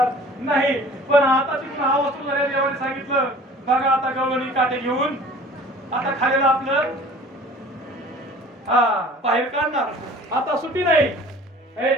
नाही पण आता तिथून हा वस्तू झाल्या देवाने सांगितलं बघा आता गवळणी काटे घेऊन आता खायला आपलं बाहेर काढणार आता सुट्टी नाही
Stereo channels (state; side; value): normal; both; correlation 0.47